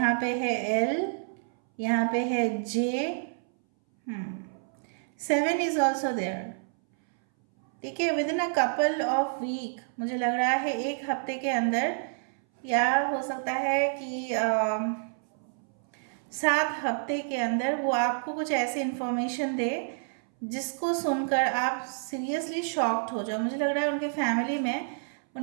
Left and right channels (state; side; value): silent; left; 59 dB below the other